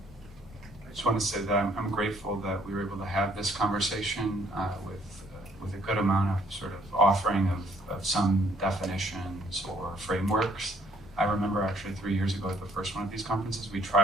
just want to say that I'm grateful that we were able to have this conversation with a good amount of sort of offering of some definitions or frameworks. I remember actually 3 years ago at the first one of these conferences, we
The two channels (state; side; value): normal; both; correlation 0.64